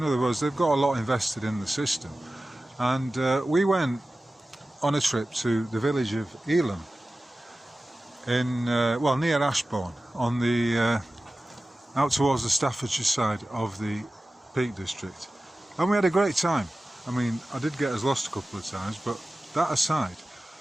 other words, they've got a lot invested in the system. And we went on a trip to the village of Elam in, well, near Ashbourne, on the out towards the Staffordshire side of the Peak District. And we had a great time. I mean, I did get us lost a couple of times, but that aside,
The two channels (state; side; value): normal; both; correlation 0.95